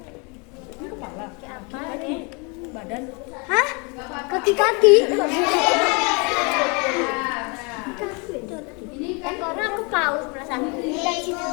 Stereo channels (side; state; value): right; quieter; 31.8 dB